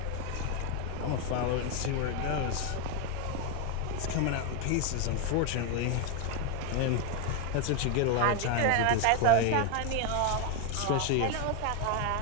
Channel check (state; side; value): different; both; correlation 0.01